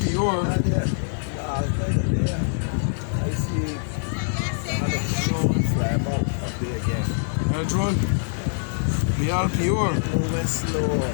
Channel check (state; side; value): silent; right; digital silence